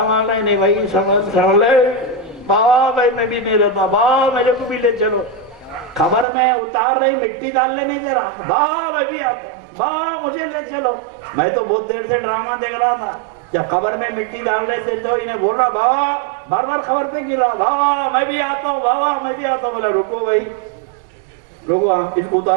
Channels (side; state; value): left; drops out; at 6.2 s